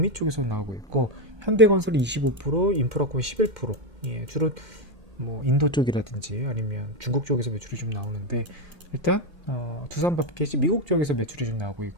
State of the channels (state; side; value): late; left; 2.1 ms